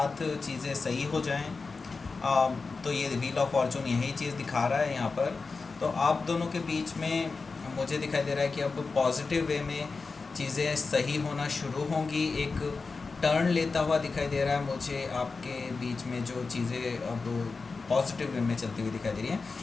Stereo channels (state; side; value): quieter; right; 4.3 dB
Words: चीज़ें सही हो जाएं। तो ये व्हील ऑफ फॉर्चून यही चीज़ दिखा रहा है यहाँ पर। तो आप दोनों के बीच में मुझे दिखाई दे रहा है कि अब पॉजिटिव वे में चीज़ें सही होना शुरू होंगी। एक टर्न लेता हुआ दिखाई दे रहा है मुझे आपके बीच में, जो चीज़ें अब पॉजिटिव वे में चलती हुई दिखाई दे रही हैं,